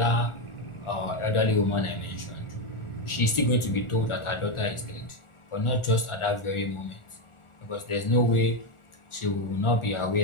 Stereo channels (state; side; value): late; right; 1.4 ms